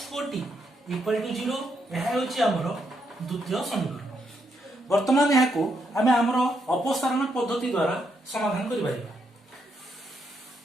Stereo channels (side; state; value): both; normal; correlation 0.78